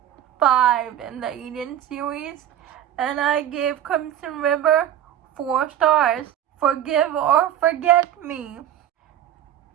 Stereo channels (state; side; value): quieter; left; 11.0 dB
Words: 5 in the Eden series, and I gave Crimson River 4 stars. Forgive or Forget Me.